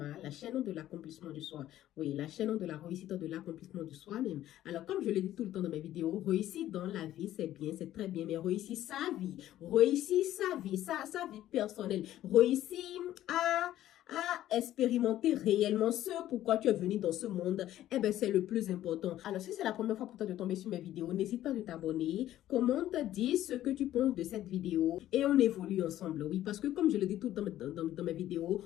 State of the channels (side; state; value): right; quieter; 13.2 dB